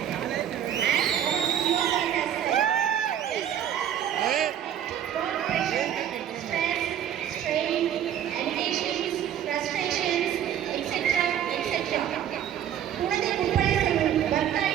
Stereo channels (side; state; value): left; quieter; 10.0 dB